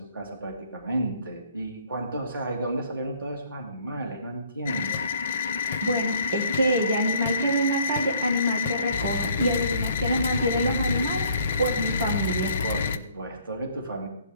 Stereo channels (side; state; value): both; inverted; correlation -0.60